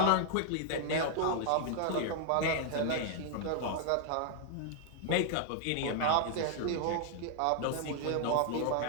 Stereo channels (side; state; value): both; different; correlation 0.00